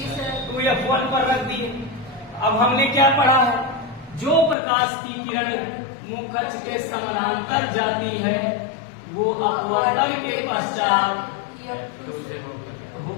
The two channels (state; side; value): drops out; right; at 4.5 s